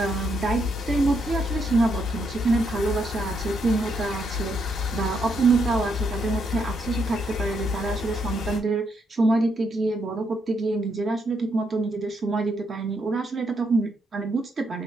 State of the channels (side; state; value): both; normal; correlation 0.77